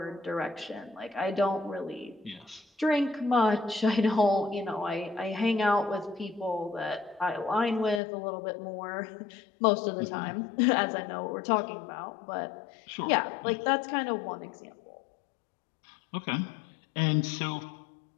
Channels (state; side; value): drops out; right; at 8.0 s